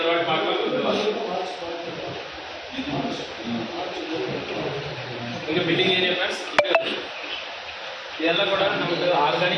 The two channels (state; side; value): identical; both; correlation 1.00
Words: வாட்டி பார்க்கலாம். இங்க மீட்டிங் ஏரியா ஃப்ரெண்ட்ஸ். இதெல்லாம் கூட நமக்கு